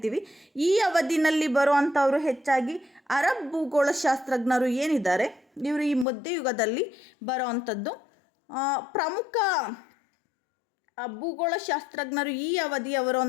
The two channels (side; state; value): right; drops out; at 6.1 s